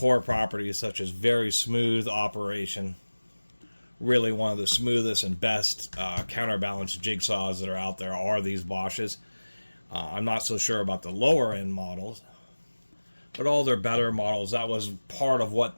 properties, such as very smooth operation. Really one of the smoothest and best counterbalance jigsaws that are out there are these Bosches. I'm not so sure about the lower end models, but all their better models, that was part of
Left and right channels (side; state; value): both; inverted; correlation -1.00